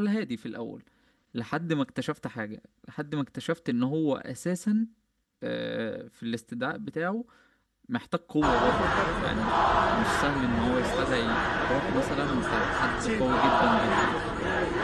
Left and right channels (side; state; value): both; identical; correlation 1.00